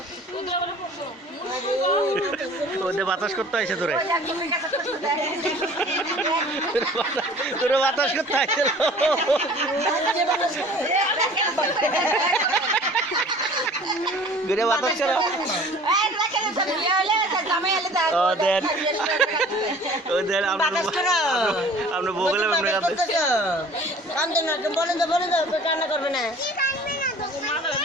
ওদের বাতাস করতে হয়েছে তোরে তোরে বাতাস করতে হয়েছে ঘুরে বাতাস করো ওদের ওদের আমরা বগলে বলেন তো কান্না করবে না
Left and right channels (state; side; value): normal; both; correlation 0.47